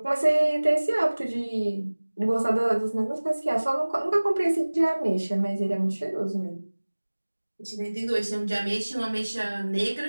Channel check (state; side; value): inverted; both; correlation -1.00